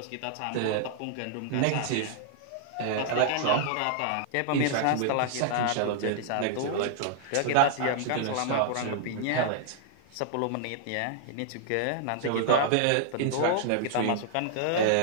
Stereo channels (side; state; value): both; different; correlation -0.01